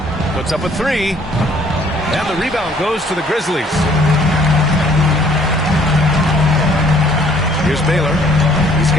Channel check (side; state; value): both; normal; correlation 0.60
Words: Puts up a 3. And the rebound goes to the Grizzlies. Here's Baylor. He's